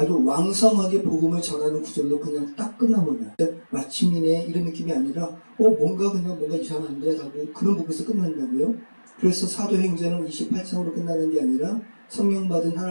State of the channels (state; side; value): inverted; both; correlation -1.00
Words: 왕성하게 복음을 전하는 구절로 그냥 딱 끝나버려요. 마침이네 이런 느낌이 아니라 뭔가 이상한데 라고 그런 부분에서 끝난다고요. 그래서 사도행전은 28장으로 끝나는 게 아니라 성령 받은